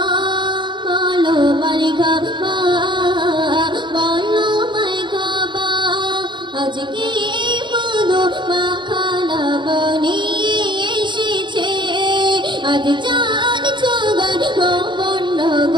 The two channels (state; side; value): late; left; 0.23 ms